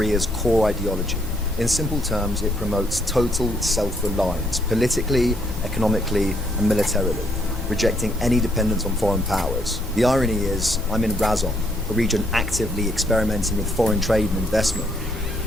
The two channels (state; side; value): noise; left; hum, 12 dB below the sound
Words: core ideology. In simple terms, it promotes total self-reliance, politically, economically, and militarily, rejecting any dependence on foreign powers. The irony is, I'm in Razon, a region actively experimenting with foreign trade and investment.